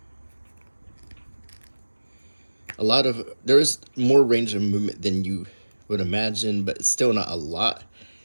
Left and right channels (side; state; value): both; inverted; correlation -1.00